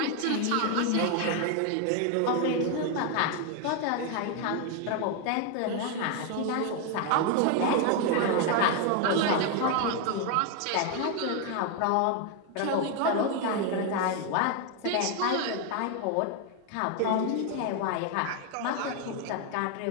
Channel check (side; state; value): both; different; correlation 0.01